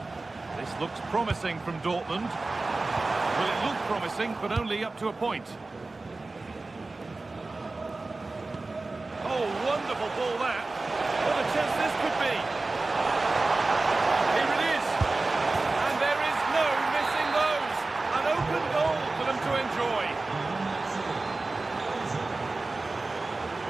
This looks promising from Dortmund. Well, it looked promising, but only up to a point. Oh, wonderful ball that. What a chance this could be. Here it is. And there is no missing those. An open goal for them to enjoy.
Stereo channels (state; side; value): quieter; left; 3.3 dB